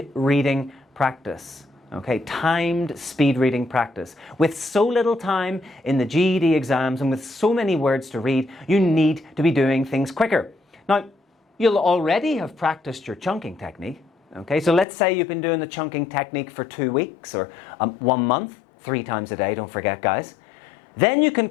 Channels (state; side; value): drops out; right; at 14.9 s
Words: reading practice. Okay, timed speed reading practice. With so little time in the GED exams and with so many words to read, you need to be doing things quicker. Now, you'll already have practiced your chunking technique. Okay, so let's say you've been doing the chunking technique for 2 weeks or 1 month, 3 times a day, don't forget guys. Then you can